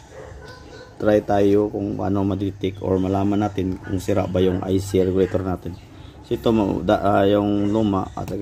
try tayo kung paano ma-detect or malaman natin kung sira ba yung IC regulator natin. So ito yung luma at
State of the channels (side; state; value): both; identical; correlation 1.00